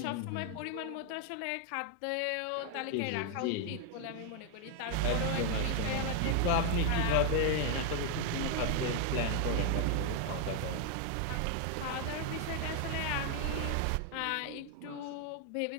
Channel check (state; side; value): different; both; correlation 0.00